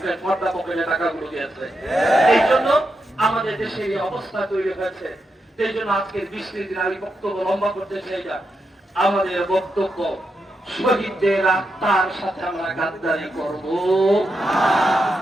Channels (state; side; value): normal; both; correlation 0.85